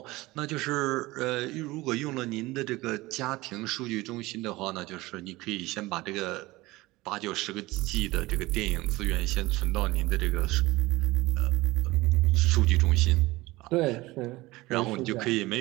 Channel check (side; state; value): left; quieter; 20.1 dB